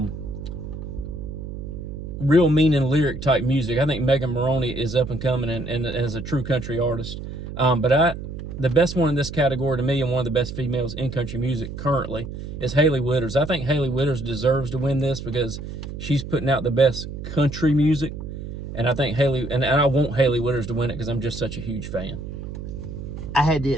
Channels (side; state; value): right; noise; hum, 8 dB below the sound